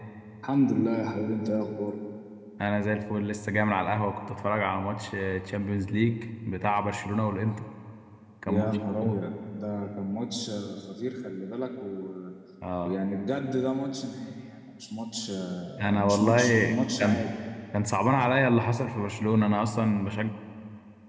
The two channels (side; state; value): both; identical; correlation 1.00